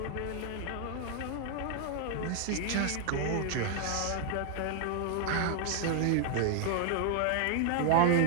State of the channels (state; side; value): different; both; correlation 0.00